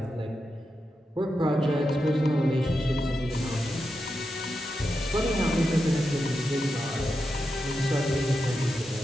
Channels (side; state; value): both; normal; correlation 0.88